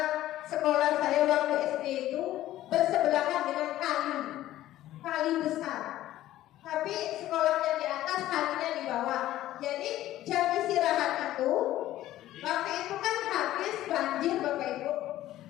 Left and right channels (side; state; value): right; quieter; 14.3 dB